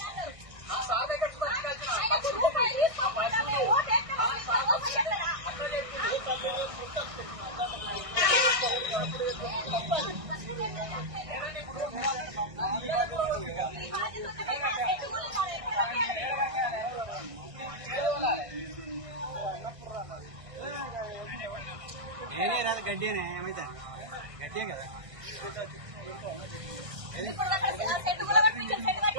నేనే రాదు గడ్డేనే ఏమైతే గడ్డే కదా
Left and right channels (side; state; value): left; late; 1.6 ms